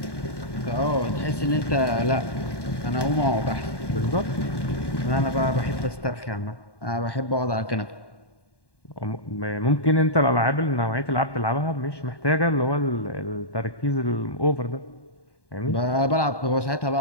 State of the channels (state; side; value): late; right; 1.1 ms